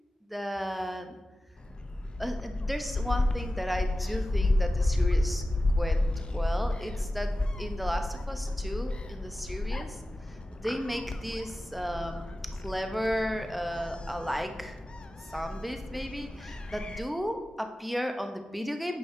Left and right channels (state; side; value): normal; both; correlation 0.95